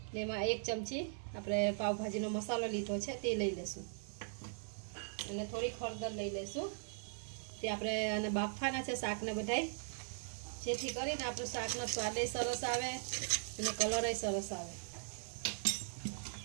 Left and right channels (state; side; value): silent; left; 51 dB below the other